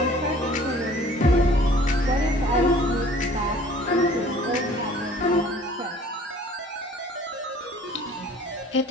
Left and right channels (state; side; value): normal; both; correlation 0.51